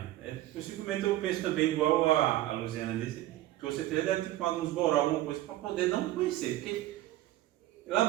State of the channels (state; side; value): quieter; left; 15.2 dB